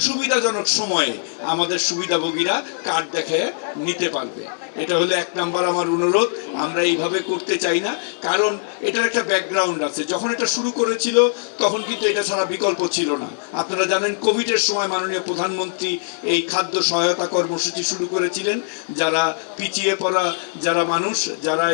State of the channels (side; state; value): right; silent; digital silence